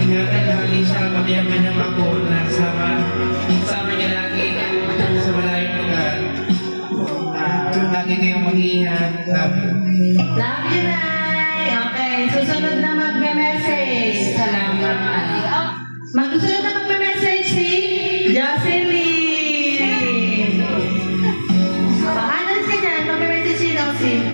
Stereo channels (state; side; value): inverted; both; correlation -1.00